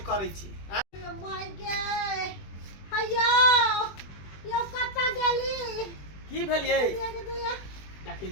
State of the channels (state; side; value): late; right; 20 ms